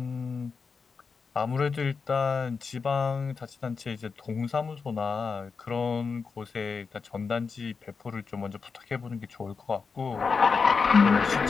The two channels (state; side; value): quieter; right; 5.1 dB